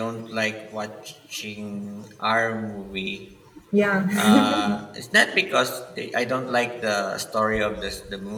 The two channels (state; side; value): identical; both; correlation 1.00